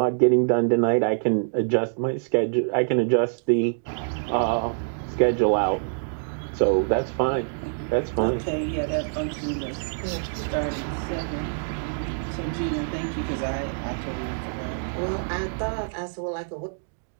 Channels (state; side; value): silent; left; digital silence